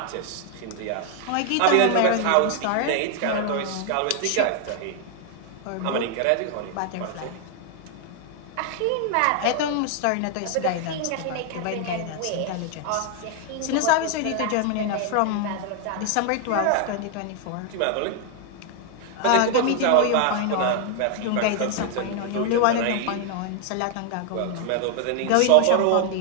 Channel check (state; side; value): different; both; correlation 0.00